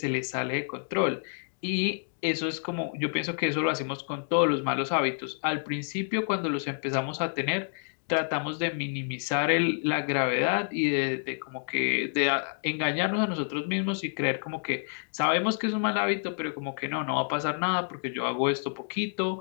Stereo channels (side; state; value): right; silent; digital silence